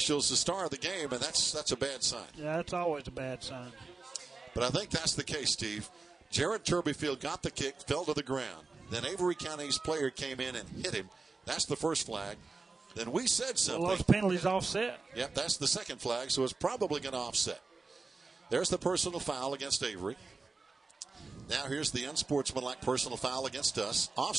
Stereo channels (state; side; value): quieter; left; 3.9 dB